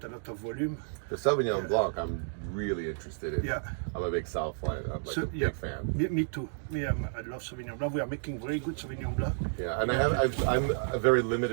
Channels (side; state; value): left; silent; digital silence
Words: a lot of volume. The Sauvignon Blanc, I'm really interested in. Yeah. I'm a big South fan. I'm like a big fan. Me too. I love Sauvignon Blanc. We are making very good Sauvignon Blanc. Yeah, and I'm a very